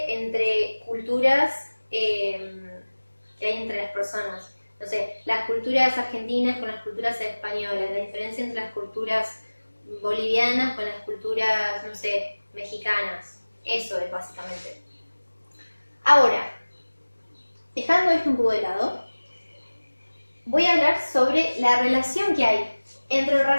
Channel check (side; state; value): both; inverted; correlation -1.00